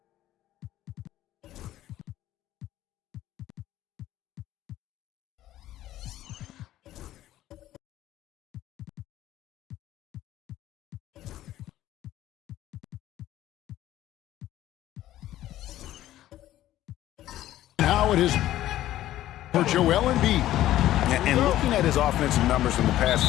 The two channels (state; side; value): quieter; right; 13.9 dB